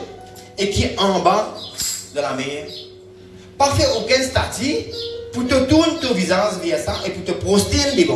et qui est en bas de la mer. Pas faire aucun statut pour te tourner ton visage vers ça et pour te prosterner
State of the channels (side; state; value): both; identical; correlation 1.00